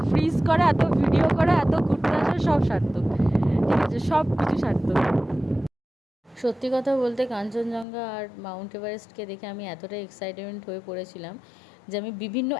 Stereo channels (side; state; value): right; drops out; at 7.9 s